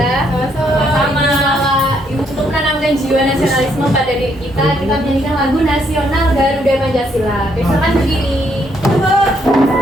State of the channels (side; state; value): both; normal; correlation 0.72